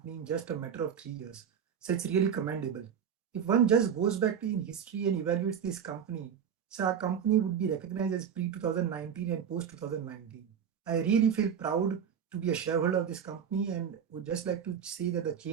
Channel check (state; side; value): quieter; left; 7.9 dB